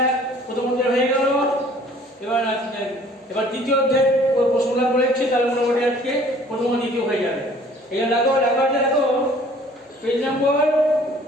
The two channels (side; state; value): both; normal; correlation 0.54